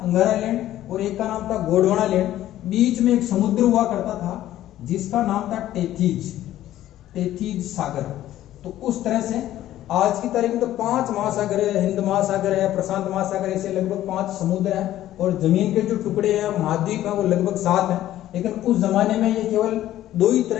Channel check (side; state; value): right; quieter; 13.4 dB